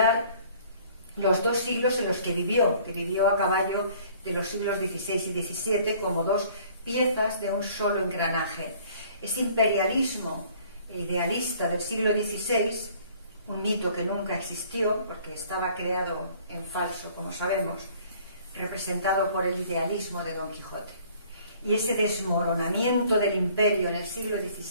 los dos siglos en los que vivió a caballo de los siglos XVI y XVII como dos piezas de un solo engranaje. Ese imperialismo idealista del siglo XVI, un mito que nunca existió porque estaba creado en falso, como sabemos, representado por el idealismo de Don Quijote. Y ese desmoronamiento del imperio en el siglo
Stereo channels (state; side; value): inverted; both; correlation -0.55